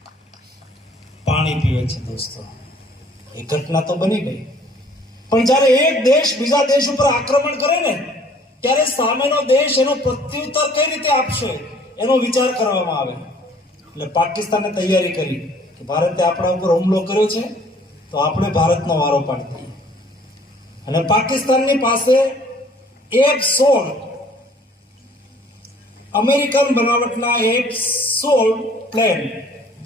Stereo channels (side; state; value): both; normal; correlation 0.56